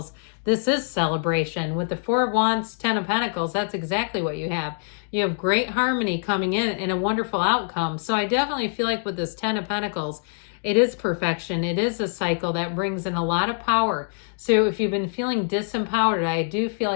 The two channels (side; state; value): right; silent; digital silence